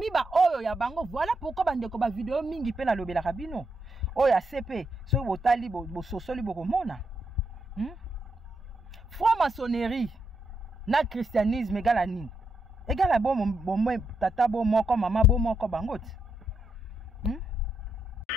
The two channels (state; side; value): normal; both; correlation 0.81